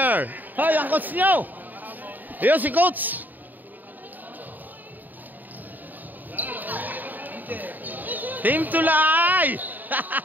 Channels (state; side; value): late; left; 0.086 ms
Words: Hoy, ang coach nyo. Ayun si coach. Team Tulay.